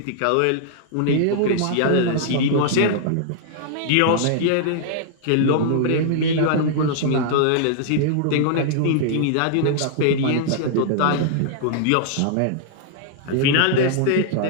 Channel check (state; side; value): different; both; correlation -0.01